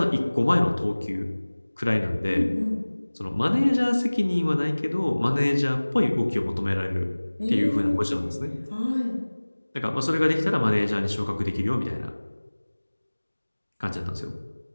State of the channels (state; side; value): inverted; both; correlation -1.00